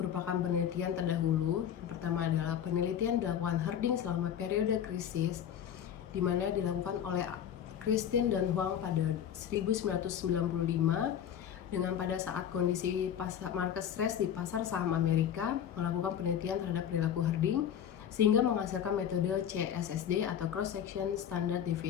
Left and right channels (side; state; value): right; quieter; 9.3 dB